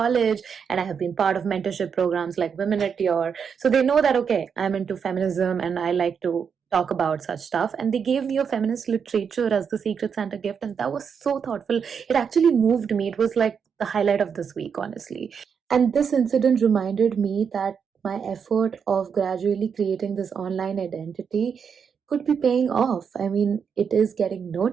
and I have been part of mentorship programs like Women at Your. So they know that okay, I'm into feminism and I like to talk about such stuff. And they gave me a feminist literature as the Secret Santa gift, and that was so thoughtful. It actually moved me. It was like the highlight of this week, honestly. And this incident reminded me that my effort of gradually creating this online identity could be paying off. I mean, it is getting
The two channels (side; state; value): left; quieter; 6.7 dB